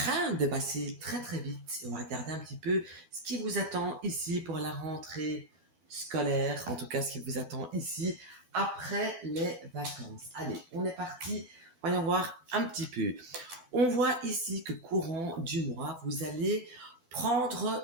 de passer très très vite. Et on va regarder un petit peu ce qui vous attend ici pour la rentrée scolaire, en tout cas ce qui vous attend ici après les vacances. Allez, on est parti, voyons voir un petit peu. On voit ici que courant du mois, vous allez prendre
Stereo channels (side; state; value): left; late; 12 ms